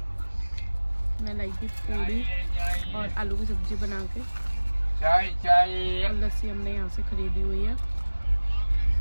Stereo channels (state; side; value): inverted; both; correlation -1.00